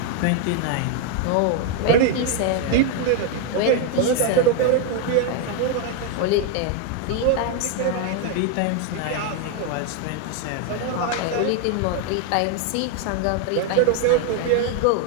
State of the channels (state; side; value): different; both; correlation 0.01